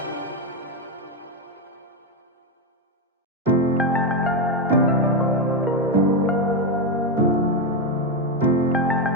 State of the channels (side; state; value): both; normal; correlation 0.08